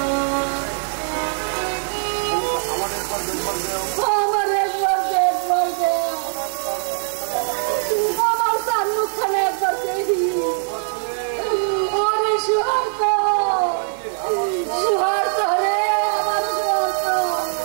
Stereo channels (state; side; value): silent; left; 65 dB below the other